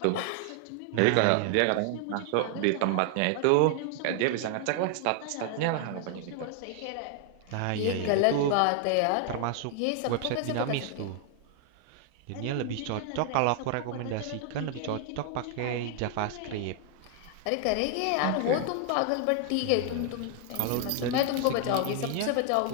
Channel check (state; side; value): different; both; correlation 0.00